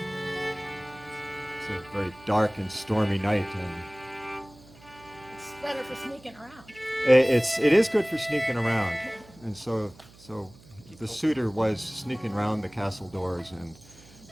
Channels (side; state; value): right; noise; hum, 23 dB below the sound